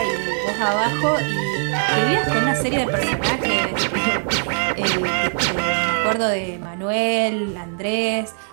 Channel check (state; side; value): silent; left; 61 dB below the other